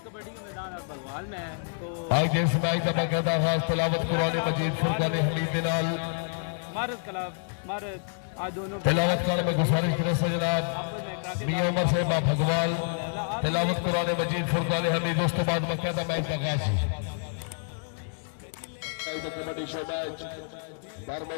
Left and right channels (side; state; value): right; silent; digital silence